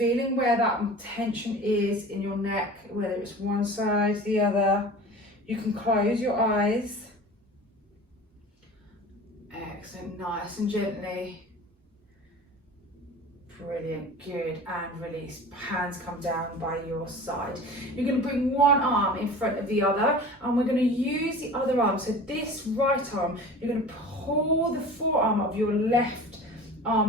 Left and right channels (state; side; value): normal; both; correlation 0.39